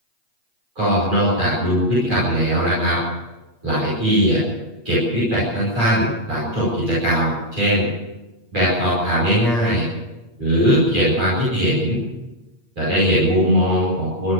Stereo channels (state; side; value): late; left; 8.4 ms